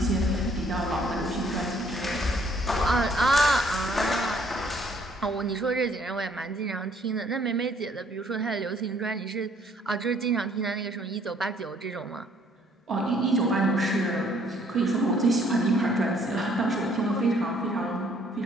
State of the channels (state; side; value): normal; both; correlation 0.63